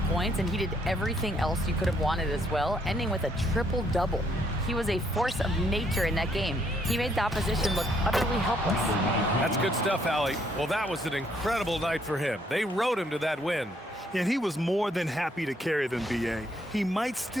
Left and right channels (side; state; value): both; normal; correlation 0.70